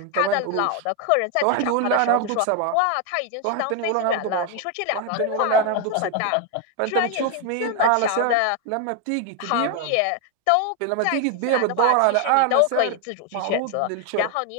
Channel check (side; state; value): both; different; correlation 0.01